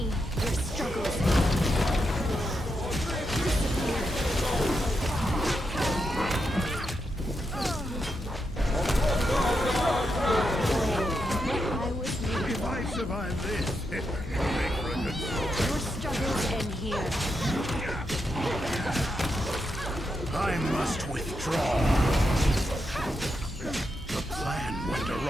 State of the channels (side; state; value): both; normal; correlation 0.84